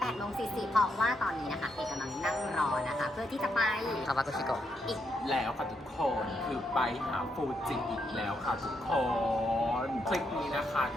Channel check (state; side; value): normal; both; correlation 0.78